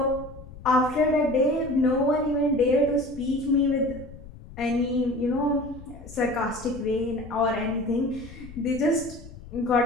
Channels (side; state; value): left; noise; rumble, 16 dB below the sound